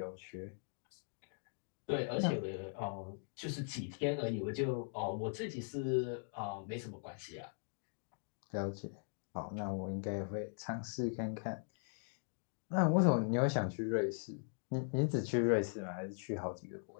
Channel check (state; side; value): silent; right; digital silence